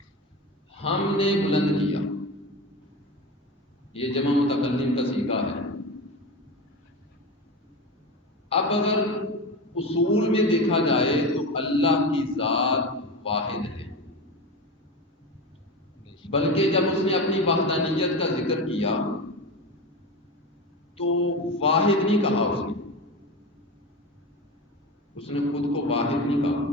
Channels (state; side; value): normal; both; correlation 0.24